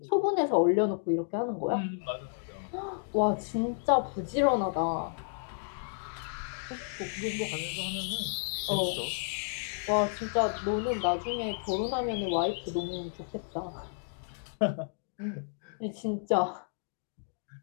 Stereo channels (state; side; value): silent; right; digital silence